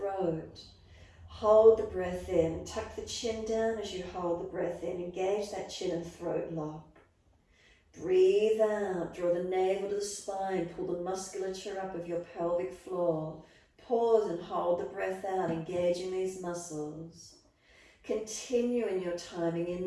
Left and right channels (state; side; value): identical; both; correlation 1.00